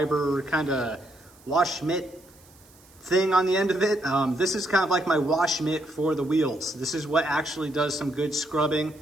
kind of wash mitt thing on the end of it. This is kind of like my wash mitt for the wheels. This is what actually does some good scrubbing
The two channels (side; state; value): right; noise; hiss, 27 dB below the sound